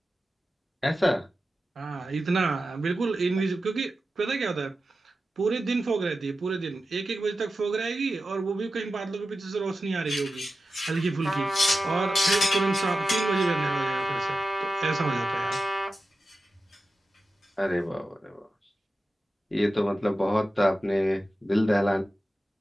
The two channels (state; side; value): normal; both; correlation 0.93